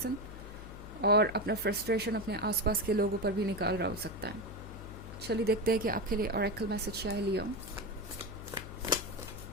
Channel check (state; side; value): noise; left; hum, 12 dB below the sound